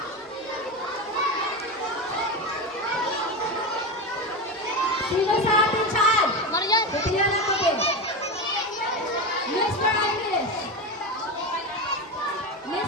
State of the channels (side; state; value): both; normal; correlation 0.19